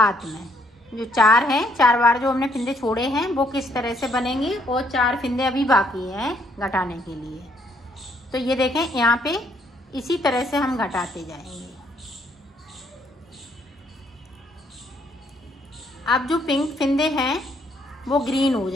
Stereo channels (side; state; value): both; normal; correlation 0.69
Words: में, जो 4 हैं, 4 बार जो हमने फिंदे छोड़े हैं वो किस तरह से बनेंगे और 4 फिंदे अभी बाकी हैं घटाने के लिए। तो ये देखें यहाँ पे इसी तरह से हम घटाते जाएंगे। अब जो पिंक फिंदे हैं वो ग्रीन हो